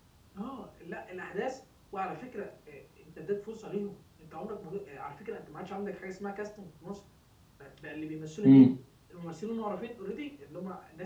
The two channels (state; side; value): identical; both; correlation 1.00